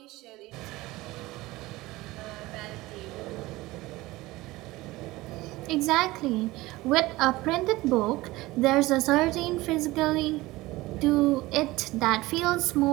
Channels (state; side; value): quieter; left; 19.4 dB